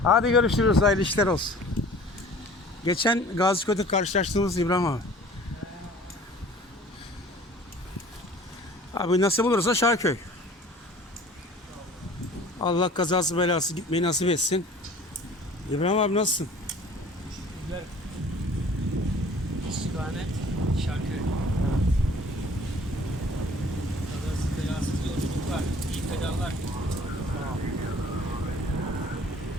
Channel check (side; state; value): both; normal; correlation 0.48